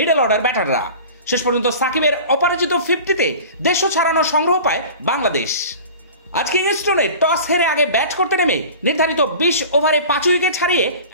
অর্ডার ব্যাটাররা। শেষ পর্যন্ত সাকিবের অপরাজিত 50-তে 150 ছাড়ানো সংগ্রহ পায় বাংলাদেশ। আজ কিংস্টনে টস হেরে আগে ব্যাট করতে নেমে নির্ধারিত 20 ওভারে 5 উইকেট হারিয়ে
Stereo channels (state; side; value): inverted; both; correlation -0.39